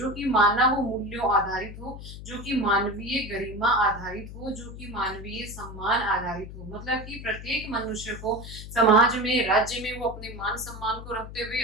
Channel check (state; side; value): noise; left; hum, 12 dB below the sound